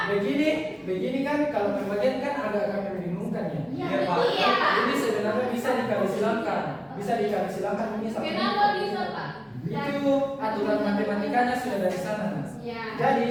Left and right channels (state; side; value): identical; both; correlation 1.00